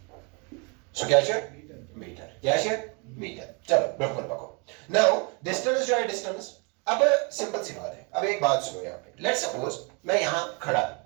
सो क्या है मीटर चलो बिल्कुल पकड़ो नाउ डिस्टेंस जो है डिस्टेंस अब सिंपल सी बात है अब एक बात सुनो यहाँ पे लेट्स सपोज मैं यहाँ खड़ा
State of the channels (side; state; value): left; quieter; 32.4 dB